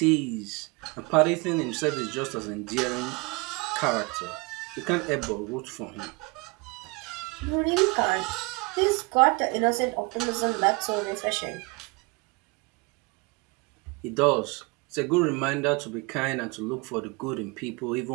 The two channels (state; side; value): quieter; left; 27.6 dB